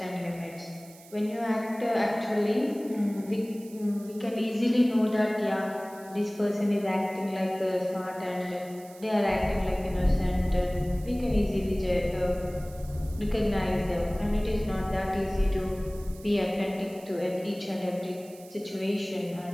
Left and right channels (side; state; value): right; noise; hiss, 22 dB below the sound